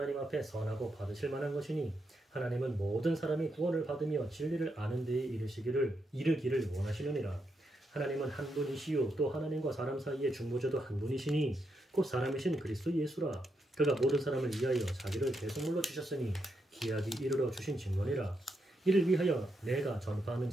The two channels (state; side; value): normal; both; correlation 0.82